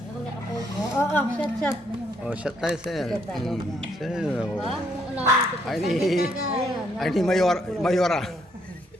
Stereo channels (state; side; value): normal; both; correlation 0.71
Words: nakapost. Oo, chat. Oh, shot tayo, sir. Sir, oh. Ha? Alamin ko. Ay ni Mayora.